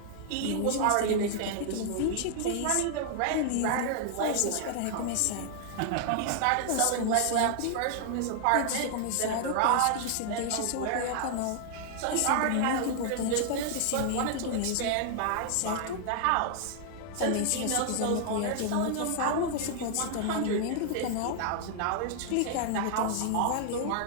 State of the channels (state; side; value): different; both; correlation 0.00